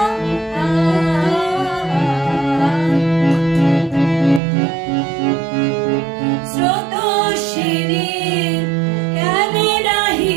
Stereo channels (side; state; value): left; drops out; at 4.4 s